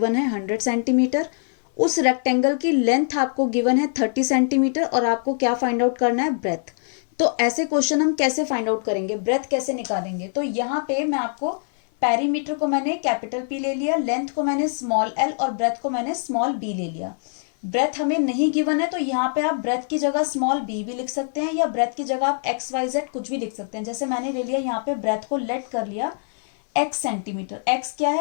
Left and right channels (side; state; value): right; silent; 56 dB below the other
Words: है 100 सेंटीमीटर। उस रेक्टेंगल की लेंथ आपको गिवन है 30 सेंटीमीटर और आपको क्या फाइंड आउट करना है, ब्रेथ। तो ऐसे क्वेश्चन हम कैसे फाइंड आउट करेंगे, ब्रेथ कैसे निकालेंगे? तो यहाँ पे मैं आपको पेरीमीटर को मैंने कैपिटल पी ले लिया, लेंथ को मैंने स्मॉल एल और ब्रेथ को मैंने स्मॉल बी ले लिया। ब्रेथ हमें नहीं गिवन है तो यहाँ पे आप ब्रेथ की जगह स्मॉल बी भी लिख सकते हैं, या ब्रेथ की जगह आप XYZ कुछ भी लिख सकते हैं। जैसे मैंने ले लिया यहाँ पे ब्रेथ को लेट कर लिया x सेंटीमीटर। x क्या